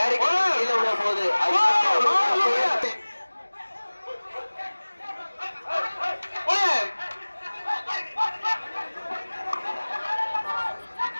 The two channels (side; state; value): both; inverted; correlation -1.00